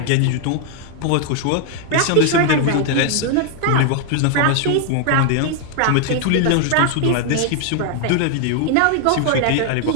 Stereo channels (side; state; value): both; different; correlation 0.00